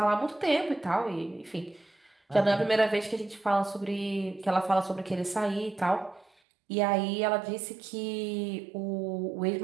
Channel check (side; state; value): left; drops out; at 6.2 s